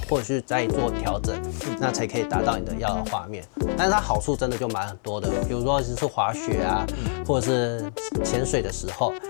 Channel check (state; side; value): silent; right; 61 dB below the other